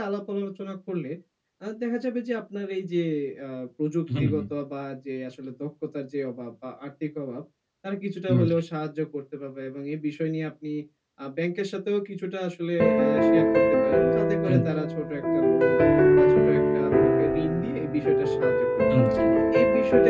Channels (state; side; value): identical; both; correlation 1.00